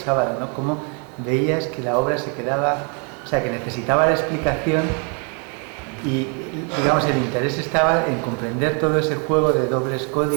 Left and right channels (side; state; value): left; quieter; 37.0 dB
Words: ¿no? Cómo veías que la obra se quedaba, o sea, que necesitaba la explicación y, digamos, el interés estaba en comprender todo ese juego de dobles